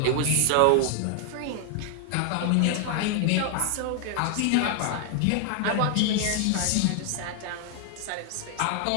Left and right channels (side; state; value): both; different; correlation 0.00